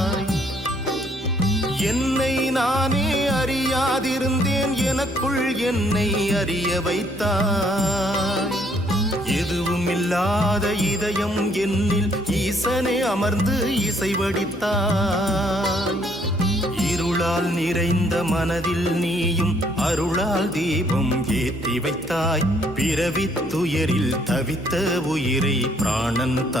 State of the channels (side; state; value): both; normal; correlation 0.66